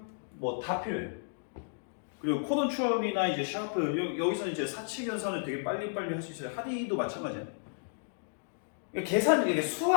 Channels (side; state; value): right; silent; digital silence